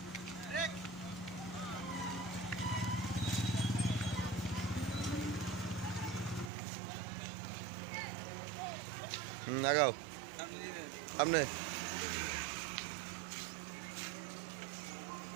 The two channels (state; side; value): drops out; left; at 6.5 s